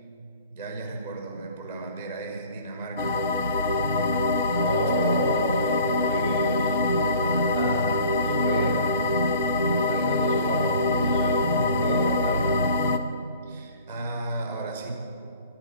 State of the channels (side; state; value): both; inverted; correlation -0.49